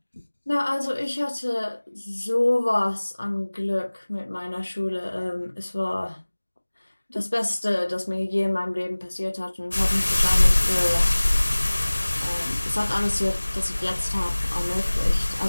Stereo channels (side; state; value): both; inverted; correlation -1.00